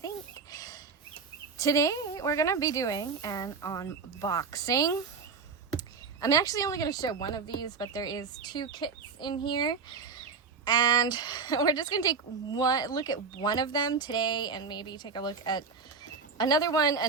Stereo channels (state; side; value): quieter; left; 5.1 dB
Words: Today we're going to be doing an unboxing. I'm actually only going to show one of these, but there is two kits in here. And we're just going to take one look at one of them today and maybe take a look at another one